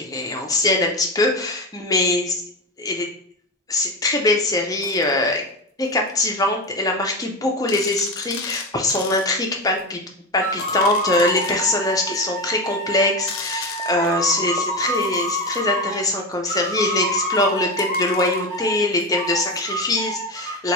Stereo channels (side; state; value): both; normal; correlation 0.18